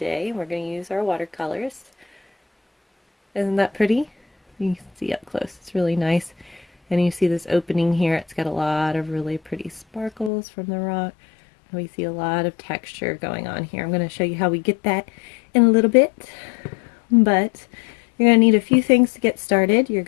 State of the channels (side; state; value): right; drops out; at 10.3 s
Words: We're going to use our watercolors. Isn't that pretty? You can see up close. It's really nice. And you see this opening here. It's got a lot of really pretty sparkles from the rock. We see a lot of texture going on here. I'm going to show you how we get that in a little bit, but you're going to need a few things to get started. You're